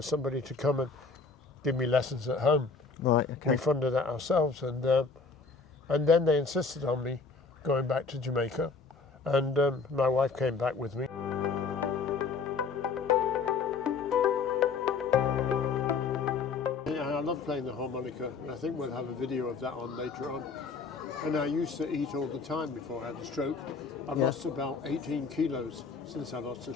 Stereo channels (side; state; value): right; quieter; 4.7 dB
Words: somebody to come and give me lessons at home. Right, okay. We funded that ourselves, and then they insisted on me going back to Jamaica, and my wife came back with me. I love playing the harmonica, and I think we'll have a video of that on later on. And I used to eat all the time before I had a stroke. I've lost about 18 kilos since I lost the